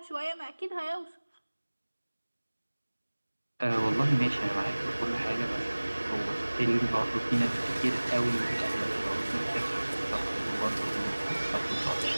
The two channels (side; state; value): both; inverted; correlation -1.00